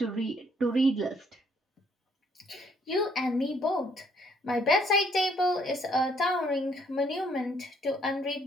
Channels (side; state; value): both; normal; correlation 0.66